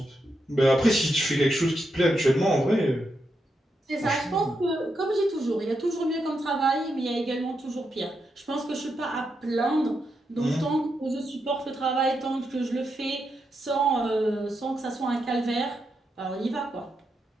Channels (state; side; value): normal; both; correlation 0.84